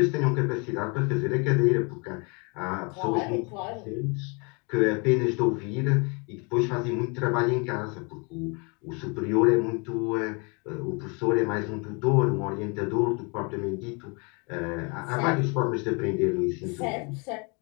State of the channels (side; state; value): right; quieter; 32.6 dB